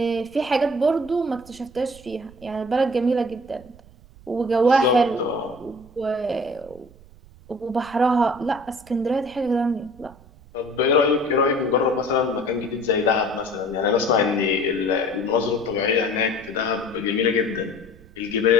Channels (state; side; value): noise; right; rumble, 23 dB below the sound